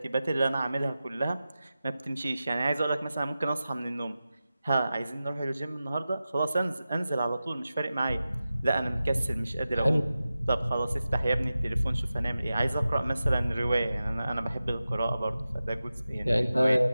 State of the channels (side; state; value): both; inverted; correlation -0.94